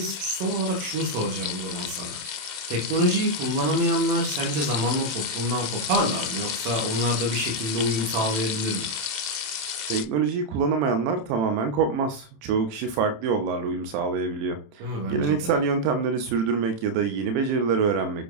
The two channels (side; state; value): left; late; 27 ms